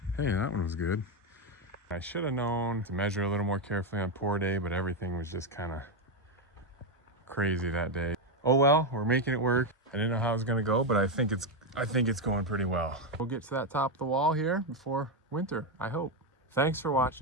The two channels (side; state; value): both; normal; correlation 0.07